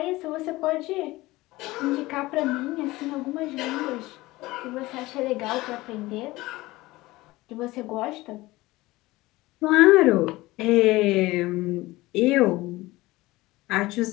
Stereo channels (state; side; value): quieter; right; 19.4 dB